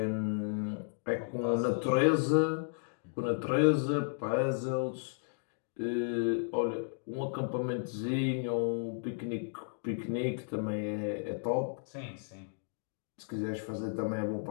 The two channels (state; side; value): silent; right; digital silence